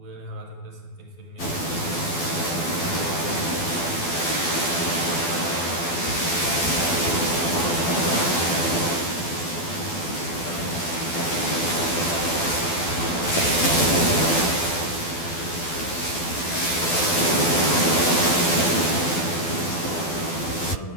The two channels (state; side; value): late; right; 12 ms